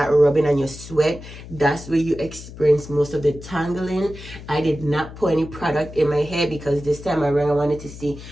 rubbing and you sweat, that's where you experience most of the tangling. I did not put any product in my hair because this time around I wanted to see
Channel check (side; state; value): left; noise; hum, 14 dB below the sound